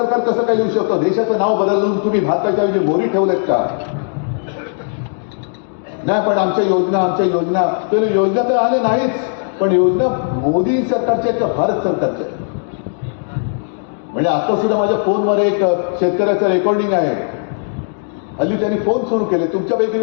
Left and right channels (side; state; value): right; silent; digital silence